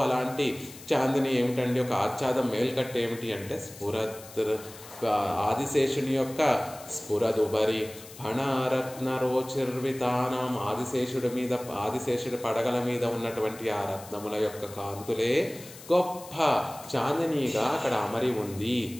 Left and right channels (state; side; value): noise; left; hiss, 17 dB below the sound